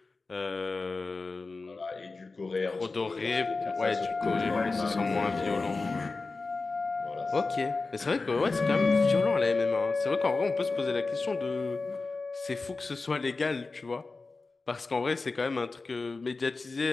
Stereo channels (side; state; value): right; quieter; 3.8 dB